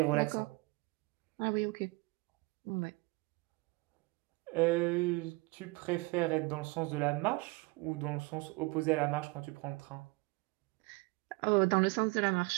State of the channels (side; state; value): left; quieter; 24.9 dB